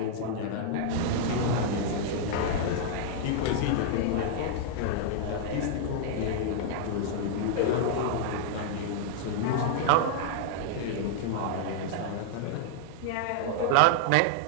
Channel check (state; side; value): different; both; correlation -0.01